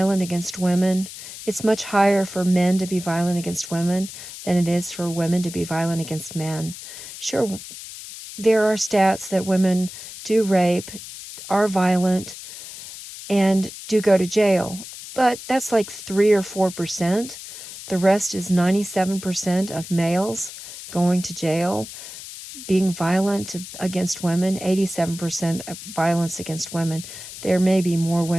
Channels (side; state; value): left; noise; hiss, 13 dB below the sound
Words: against women. It's much higher for men to be violent against women than it is for women to be violent against men. Sure, there are stats that women do rape, are violent, and do go to jail, but that's like 3 or 4%. The rest is 97% of males going to jail, being violent against women, 87% of violence against women. There may be more